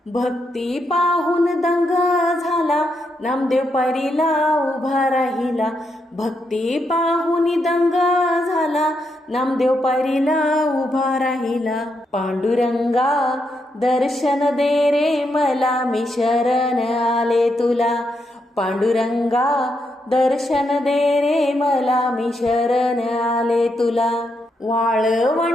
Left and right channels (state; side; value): normal; both; correlation 0.81